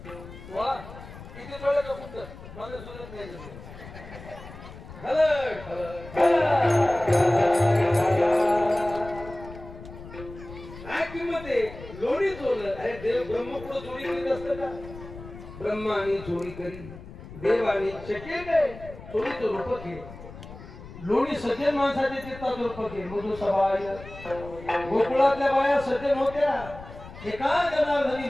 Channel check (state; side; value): noise; left; rumble, 15 dB below the sound